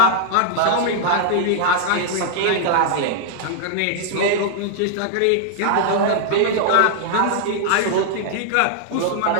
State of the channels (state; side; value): different; both; correlation -0.01